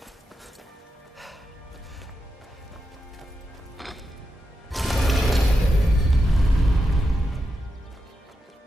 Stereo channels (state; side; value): normal; both; correlation 0.88